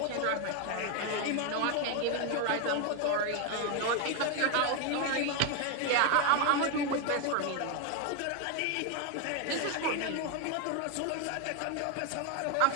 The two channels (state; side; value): different; both; correlation 0.01